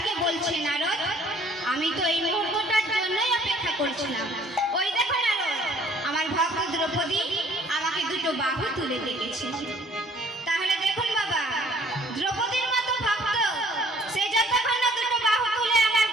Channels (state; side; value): normal; both; correlation 0.58